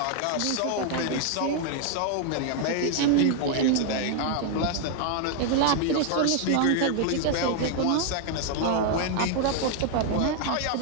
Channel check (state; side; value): different; both; correlation 0.00